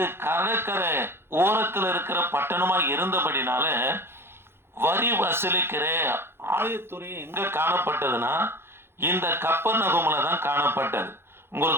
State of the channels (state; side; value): late; left; 0.11 ms